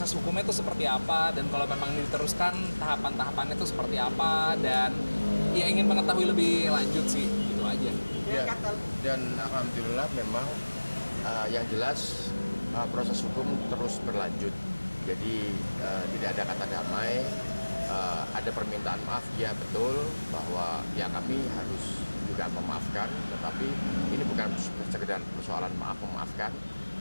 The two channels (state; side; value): inverted; both; correlation -1.00